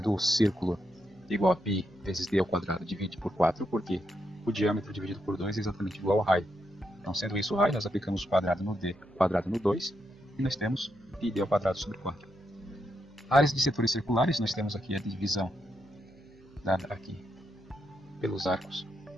círculo igual a π vezes d ao quadrado dividido por 4, porque o diâmetro dividido por 2 é exatamente igual ao raio. Então sendo isso o raio, nós aplicamos o quadrado no d, quadrado no 2, e nós temos πd ao quadrado sobre 4. Áreas de setores circulares, nós temos aqui a divisão dada aqui pelos arcos.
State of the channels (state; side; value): noise; right; hum, 27 dB below the sound